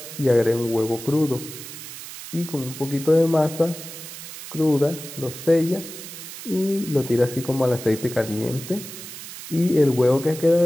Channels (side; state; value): right; noise; hiss, 12 dB below the sound